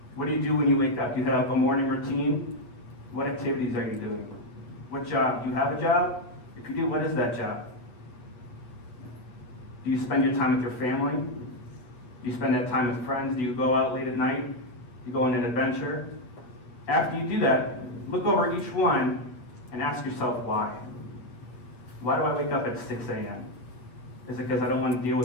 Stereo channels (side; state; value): right; late; 8.3 ms